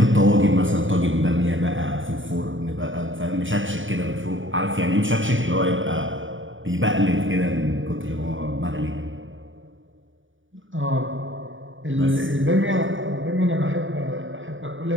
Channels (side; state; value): left; late; 0.57 ms